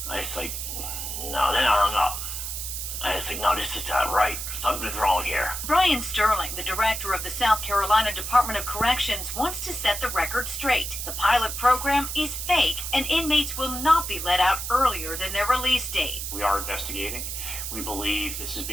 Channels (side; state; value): right; noise; hiss, 5 dB below the sound